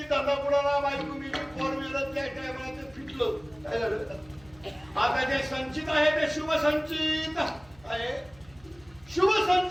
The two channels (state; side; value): noise; right; hum, 26 dB below the sound